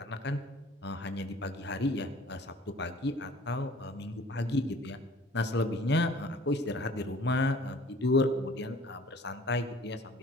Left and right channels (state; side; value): normal; both; correlation 0.51